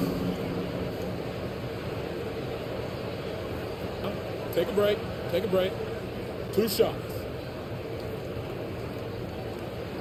Take a break. Take a break. 2 shots.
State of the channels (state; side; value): identical; both; correlation 1.00